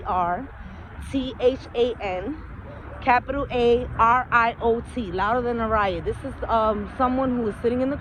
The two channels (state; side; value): identical; both; correlation 1.00